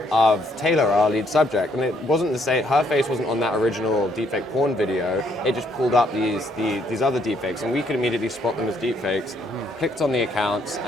Taylor, our lead subject. And it wasn't the same, her face wasn't on that original deepfake porn video. It just pulled up these other deepfakes, and we could immediately spot them as deepfakes. Clicked on the accounts,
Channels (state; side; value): normal; both; correlation 0.69